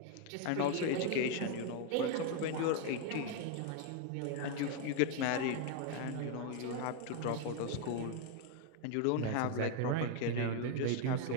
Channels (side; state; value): both; different; correlation 0.01